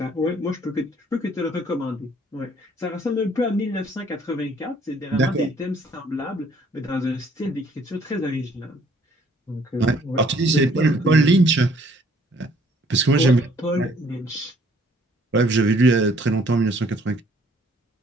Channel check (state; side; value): normal; both; correlation 0.61